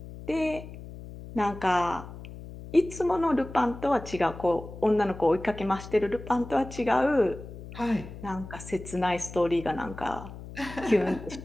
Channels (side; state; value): left; noise; hum, 13 dB below the sound